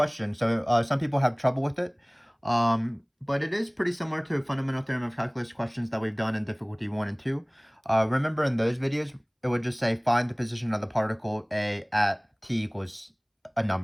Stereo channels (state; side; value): identical; both; correlation 1.00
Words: So some people have trouble with it. But it is pretty similar to Fundamental Theorem of Calculus questions that we've done in difficulty 1 and 2. Remember in those videos, it would just say find the position of the particle A at t equals a